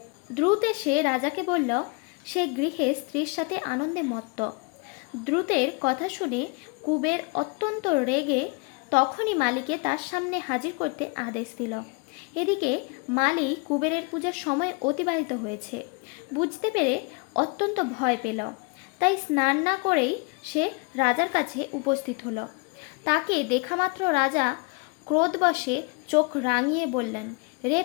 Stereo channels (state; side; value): quieter; right; 29.8 dB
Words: দ্রুত এসে রাজাকে বলল, সে গৃহে স্ত্রীর সাথে আনন্দে মত্ত। দ্রুতের কথা শুনে কুবের অত্যন্ত রেগে তখনই মালিকে তার সামনে হাজির করতে আদেশ দিল। এদিকে মালি কুবেরের পূজার সময় অতিবাহিত হয়েছে বুঝতে পেরে অত্যন্ত ভয় পেল। তাই স্নান না করেই সে রাজার কাছে উপস্থিত হলো। তাকে দেখামাত্র রাজা ক্রোধবশে চোখ রাঙিয়ে বললেন, রে